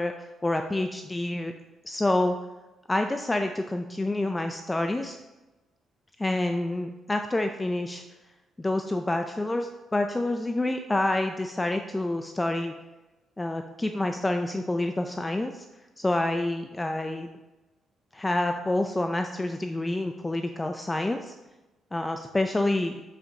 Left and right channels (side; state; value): both; normal; correlation 0.96